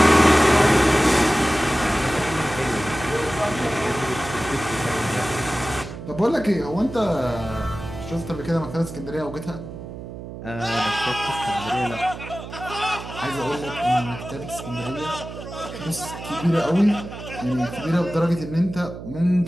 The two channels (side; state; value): right; noise; hum, 11 dB below the sound